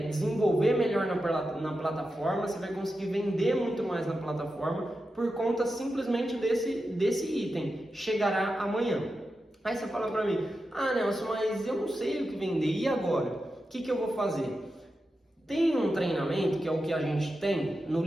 desenvolver melhor na plataforma, você vai conseguir vender muito mais na plataforma por conta simplesmente desse item. Chegará amanhã. Aí você fala para mim, ah Nelson, mas eu não sei o que vender, e agora? O que eu vou fazer? Tem um treinamento, que é o que a gente tem, no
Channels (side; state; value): both; normal; correlation 0.90